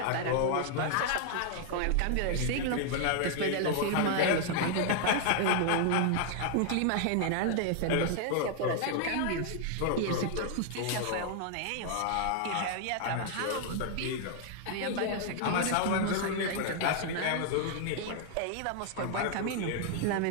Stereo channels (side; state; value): both; different; correlation 0.00